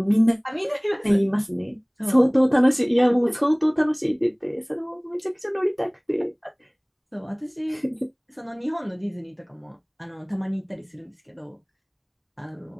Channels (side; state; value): both; identical; correlation 1.00